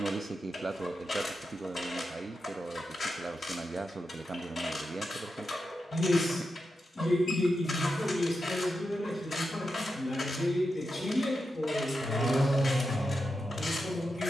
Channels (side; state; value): both; normal; correlation 0.88